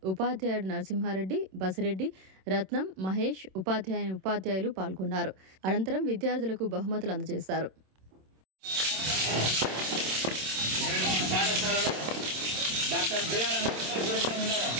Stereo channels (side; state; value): left; late; 26 ms